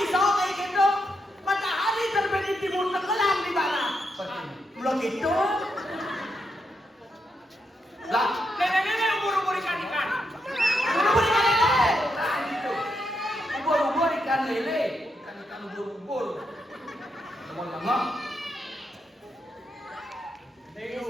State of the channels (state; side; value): normal; both; correlation 0.82